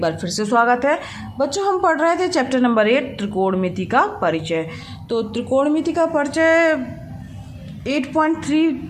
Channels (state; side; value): identical; both; correlation 1.00